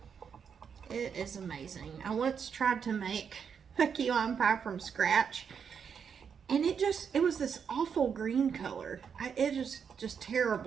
It is amazing. I once tried to make a key lime pie from scratch, and it was this awful green color. It was just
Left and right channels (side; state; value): left; quieter; 6.9 dB